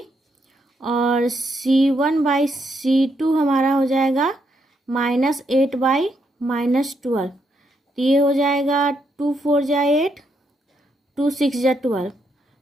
और C1/C2 हमारा हो जाएगा -8/12। तो ये हो जाएगा 2 4 जा 8, 2 6 जा 12,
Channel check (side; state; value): both; normal; correlation 0.77